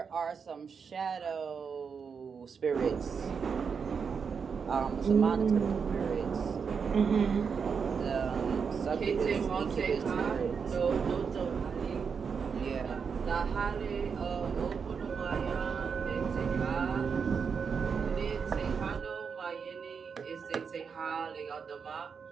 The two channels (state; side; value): quieter; left; 6.1 dB